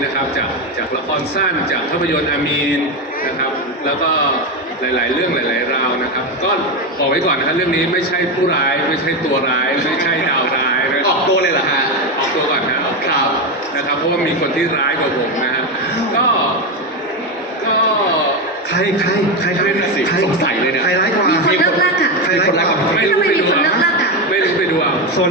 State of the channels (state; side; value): normal; both; correlation 0.13